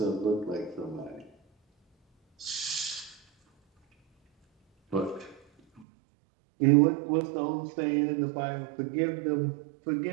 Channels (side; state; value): left; drops out; at 5.9 s